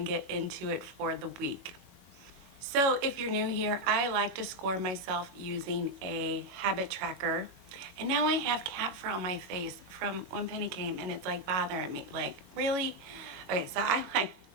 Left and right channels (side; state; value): left; late; 21 ms